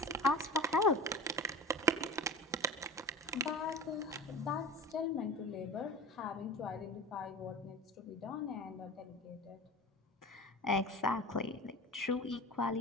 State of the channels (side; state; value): both; normal; correlation 0.33